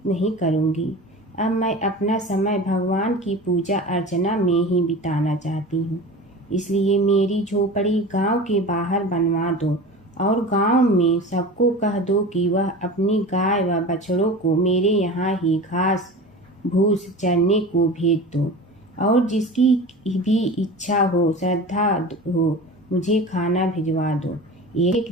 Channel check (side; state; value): both; normal; correlation 0.34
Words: नहीं करूंगी, अब मैं अपना समय भगवान की पूजा अर्चना में ही बिताना चाहती हूँ। इसलिए मेरी झोपड़ी गांव के बाहर बनवा दो और गांव में सबको कह दो कि वह अपनी गाय व बछड़ों को मेरे यहाँ ही घास भूस चरने को भेज दो और जिसकी भी इच्छा हो, श्रद्धा हो, मुझे खाना भिजवा दो। एक